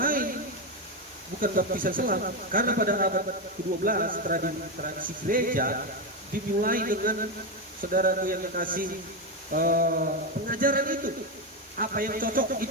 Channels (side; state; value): both; normal; correlation 0.09